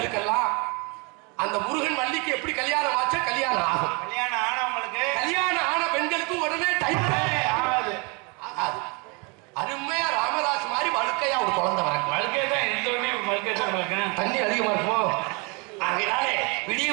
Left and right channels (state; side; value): quieter; left; 31.3 dB